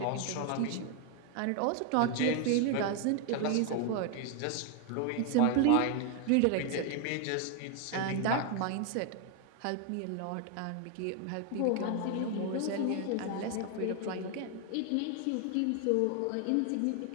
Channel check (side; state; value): both; different; correlation 0.01